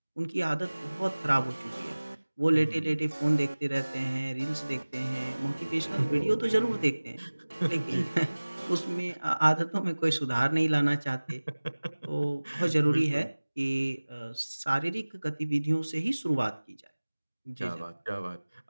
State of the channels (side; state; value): both; inverted; correlation -1.00